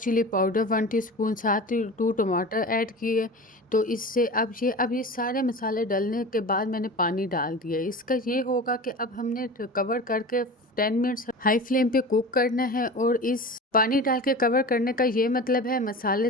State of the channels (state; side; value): normal; both; correlation 0.33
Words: पाउडर 1 टीस्पून, साथ ही 2 टमाटर ऐड किए। तो इससे अब ये सारे मसाले डालने के बाद मैंने पानी डाल दिया। इसका ये होगा कि अब हमने कवर करके 10 मिनट्स हाई फ्लेम पे कुक करना है। और इस पानी डाल के कवर करने का ये मतलब है मसाले